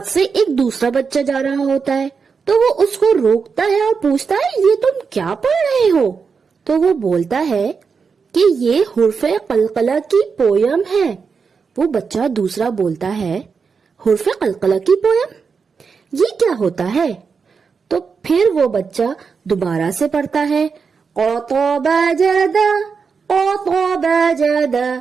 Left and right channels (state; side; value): quieter; left; 5.5 dB